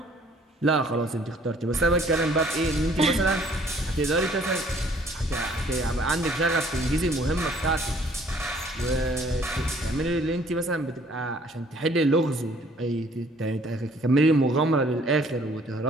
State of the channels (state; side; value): normal; both; correlation 0.59